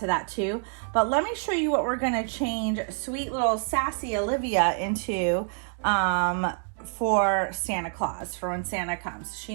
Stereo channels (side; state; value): left; silent; 56 dB below the other